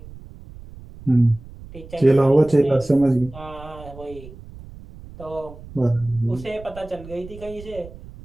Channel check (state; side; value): noise; right; rumble, 17 dB below the sound